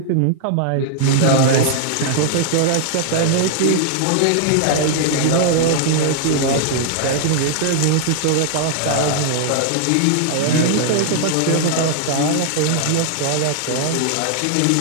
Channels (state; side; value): different; both; correlation -0.01